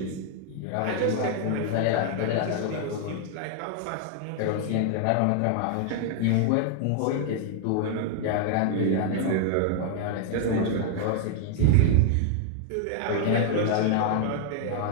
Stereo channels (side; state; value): both; different; correlation 0.00